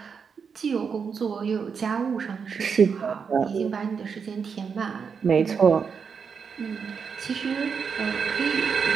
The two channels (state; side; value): quieter; left; 6.2 dB